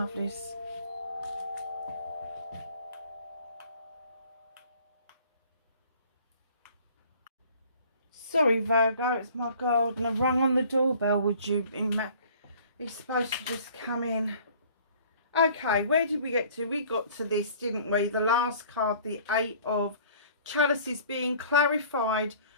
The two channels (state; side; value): inverted; both; correlation -0.52